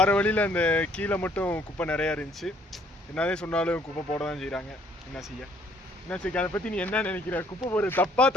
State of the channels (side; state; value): both; normal; correlation 0.63